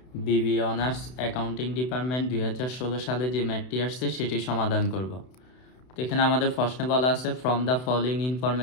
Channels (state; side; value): late; right; 32 ms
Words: বিবিএ অনার্স অ্যাকাউন্টিং ডিপার্টমেন্ট 2016 সালে যে ম্যাথটি আসছে সেটি সমাধান করব। তো এখানে আমাদের প্রশ্নে বলা আছে, from the following